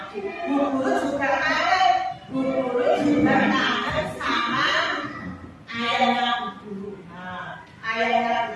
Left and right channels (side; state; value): both; identical; correlation 1.00